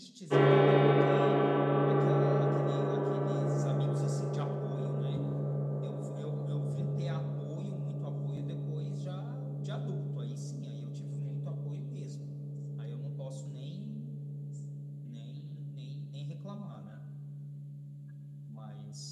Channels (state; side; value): identical; both; correlation 1.00